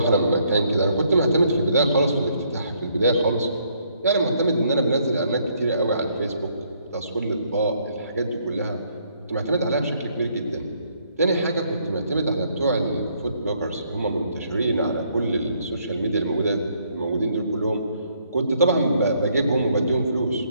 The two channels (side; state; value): both; inverted; correlation -0.70